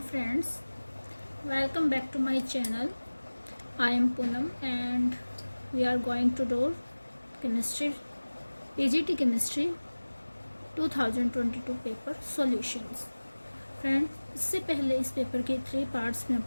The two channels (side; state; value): both; inverted; correlation -1.00